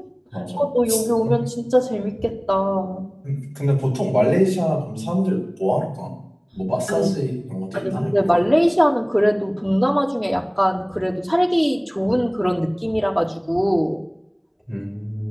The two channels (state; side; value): identical; both; correlation 1.00